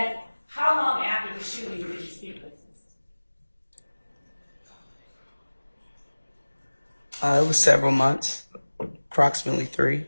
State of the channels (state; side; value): inverted; both; correlation -1.00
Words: how long after the shooting did you speak with him? It was several months, approximately 3.